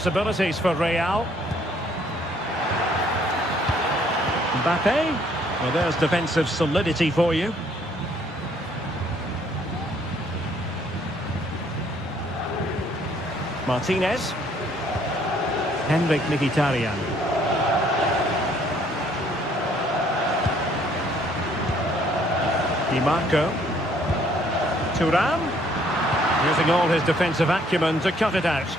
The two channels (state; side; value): normal; both; correlation 0.64